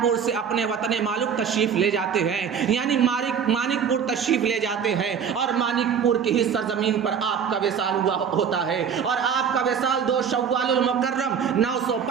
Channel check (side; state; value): left; quieter; 7.3 dB